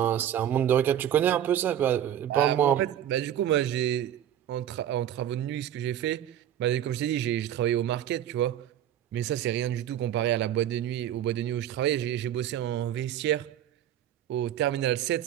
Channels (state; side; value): quieter; left; 10.8 dB